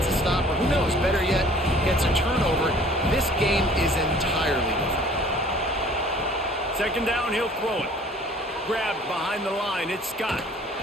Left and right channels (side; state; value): both; normal; correlation 0.52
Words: a stop, or who knows, better yet, gets a turnover. This game is entirely different. Second down, he'll throw it. Grabbed behind the line, it's Scott.